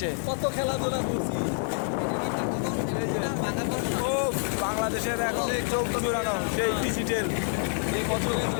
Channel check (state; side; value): silent; right; 60 dB below the other